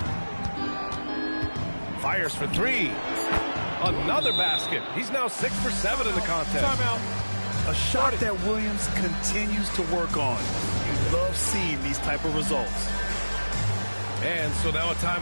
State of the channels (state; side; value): inverted; both; correlation -1.00